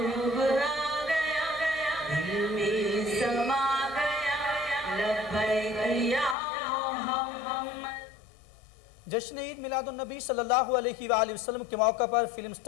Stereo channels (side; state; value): right; drops out; at 6.4 s